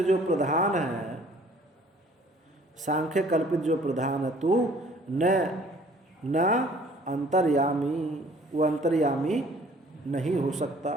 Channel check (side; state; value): both; normal; correlation 0.55